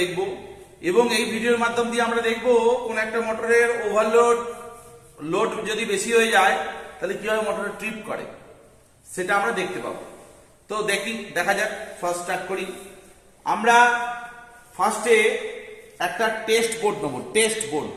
এবং এই ভিডিওর মাধ্যম দিয়ে আমরা দেখব কোন একটা মোটরের লোড যদি বেশি হয়ে যায় তাহলে কিভাবে মোটরের ট্রিপ করে সেটা আমরা দেখতে পাবো। তো দেখা যাক। ফার্স্ট স্টার্ট করি। আমরা ফার্স্টে একটা টেস্ট বোর্ড নেব।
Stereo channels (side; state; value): both; identical; correlation 1.00